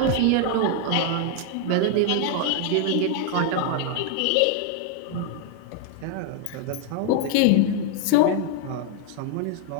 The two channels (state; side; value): different; both; correlation 0.00